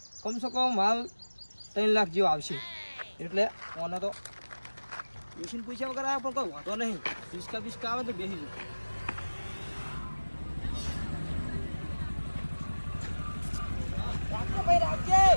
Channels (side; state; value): both; inverted; correlation -1.00